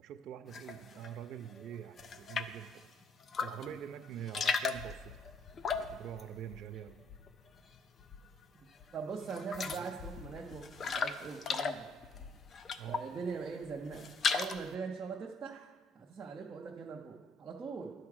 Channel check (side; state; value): both; normal; correlation 0.66